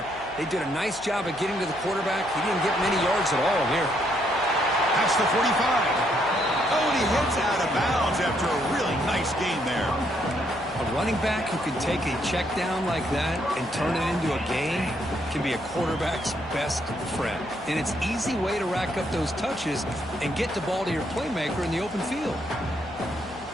They did a nice job of getting to the quarterback. He didn't get many yards at all here. That's the 45. Oh, and he hits out of bounds after a really nice gain there. A running back who can take a check down like that and turn it into a gain can be a quarterback's best friend. And it's an easy way to rack up those touches and get the ball to your playmaker in the open field.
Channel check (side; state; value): left; noise; hum, 19 dB below the sound